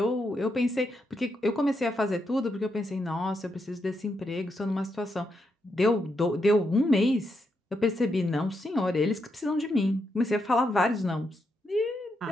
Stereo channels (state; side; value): normal; both; correlation 0.82